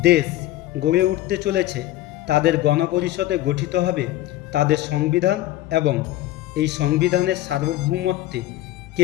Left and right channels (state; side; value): quieter; right; 15.2 dB